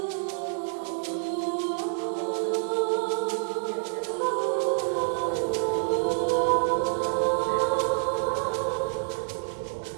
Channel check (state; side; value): silent; left; digital silence